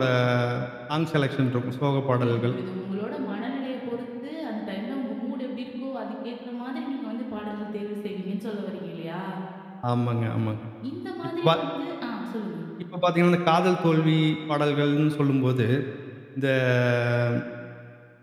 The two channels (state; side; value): identical; both; correlation 1.00